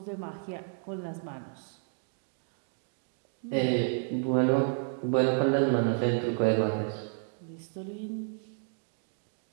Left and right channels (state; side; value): silent; left; 57 dB below the other